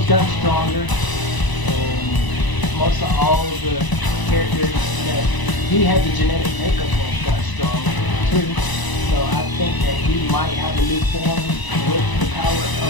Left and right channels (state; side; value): late; right; 1.0 ms